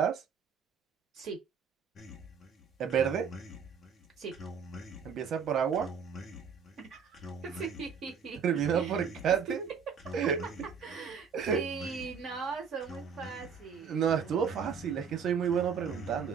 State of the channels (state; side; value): quieter; left; 6.6 dB